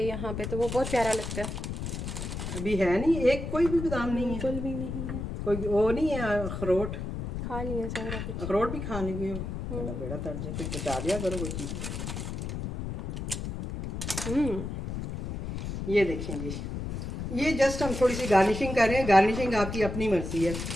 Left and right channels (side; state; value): left; noise; rumble, 5 dB below the sound